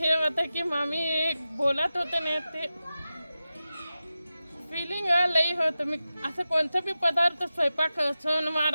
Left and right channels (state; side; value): inverted; both; correlation -0.93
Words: होतं की मामी बोलत होते ना ते फिलिंग लई होतं. मी असं कोणतं बी पदार्थ स्वयंपाक सण